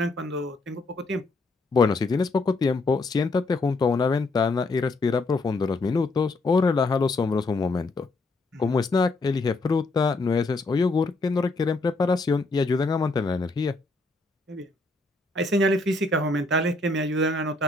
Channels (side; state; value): right; quieter; 3.2 dB